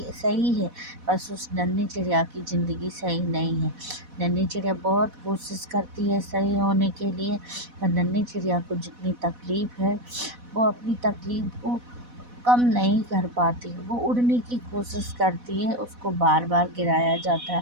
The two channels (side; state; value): left; late; 4.1 ms